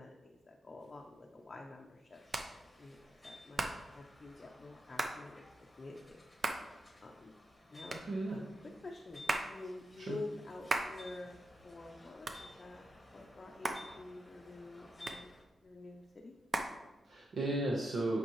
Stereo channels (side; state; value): both; normal; correlation 0.85